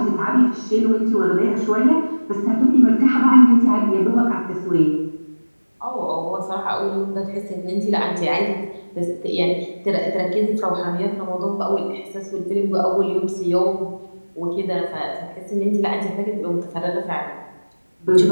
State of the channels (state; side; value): inverted; both; correlation -1.00